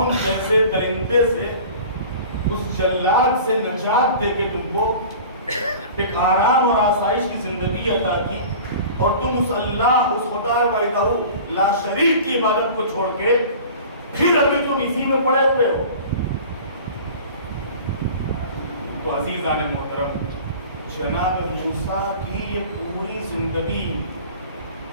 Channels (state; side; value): inverted; both; correlation -0.41